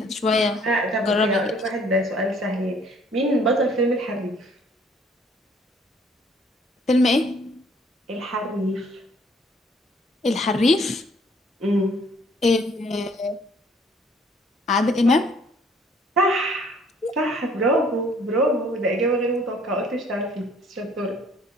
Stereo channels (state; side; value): normal; both; correlation 0.59